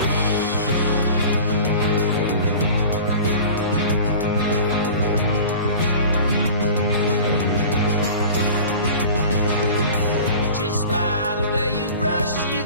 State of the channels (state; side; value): inverted; both; correlation -0.40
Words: Just by the way you brush, you